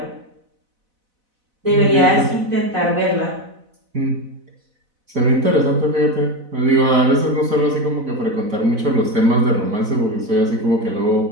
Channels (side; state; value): left; late; 4.0 ms